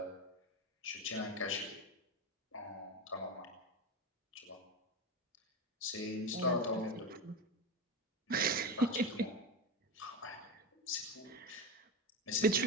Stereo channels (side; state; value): both; normal; correlation 0.19